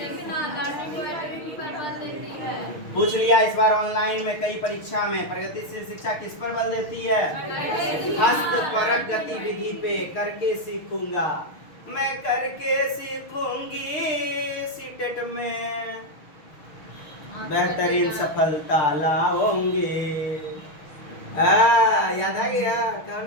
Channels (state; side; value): late; right; 6.4 ms